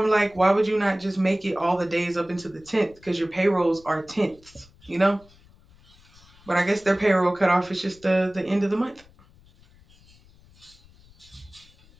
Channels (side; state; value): left; noise; rumble, 27 dB below the sound